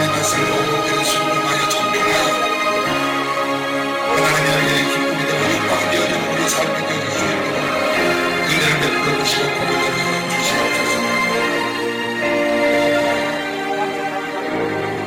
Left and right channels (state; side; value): identical; both; correlation 1.00